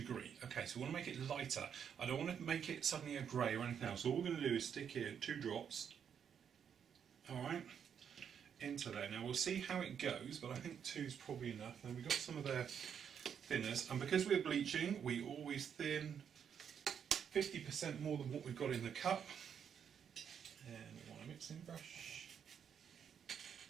Okay, so we want to make it lighter. I don't want to make it suddenly a grey or anything else. So all we're going to do is stick here 2 drops, alright, into there. Now we'll see how it goes, but I think 2 is probably enough. Then we've got some of their thinners, and because we're bleaching, we always thin 50% more than what we've got in the cup. And we want a mixing brush.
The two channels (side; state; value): left; quieter; 7.9 dB